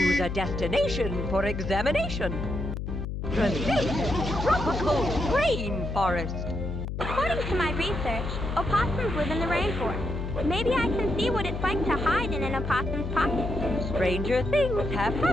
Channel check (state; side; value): noise; left; hum, 4 dB below the sound